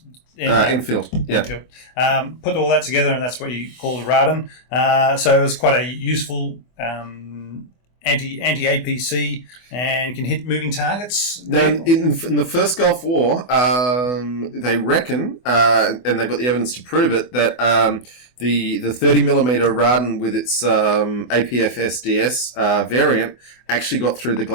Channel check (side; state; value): right; late; 24 ms